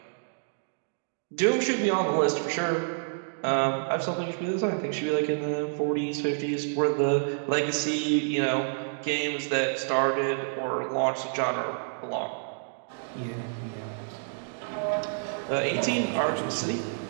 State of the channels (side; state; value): left; silent; digital silence